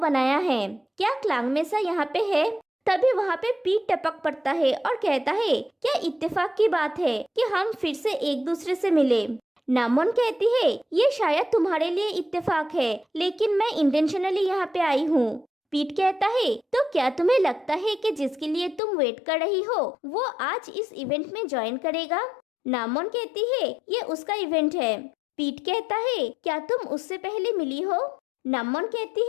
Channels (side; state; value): right; drops out; at 18.8 s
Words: है। क्या क्लांग मेसा यहाँ पे है? तभी वहाँ पे पीट टपक पड़ता है और कहता है, क्या इत्तेफाक की बात है कि हम फिर से एक दूसरे से मिले। नामोन कहती है, ये शायद तुम्हारे लिए इत्तेफाक है, लेकिन मैं इंटेंशनली यहाँ पे आई हूँ। पीट कहता है, तो क्या तुम्हें लगता है कि जिसके लिए तुम वेट कर रही हो वो आज इस इवेंट में ज्वाइन करेगा? नामोन कहती है, ये उसका इवेंट है। पीट कहता है, क्या तुम उससे पहले मिली हो? नामोन